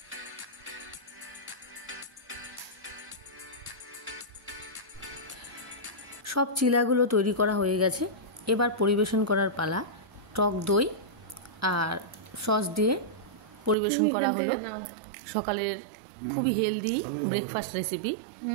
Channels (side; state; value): left; drops out; at 13.8 s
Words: সব চিলাগুলো তৈরি করা হয়ে গেছে। এবার পরিবেশন করার পালা। টক দই আর সস দিয়ে পরিবেশন করা হলো সকালের খুবই হেলদি ব্রেকফাস্ট রেসিপি।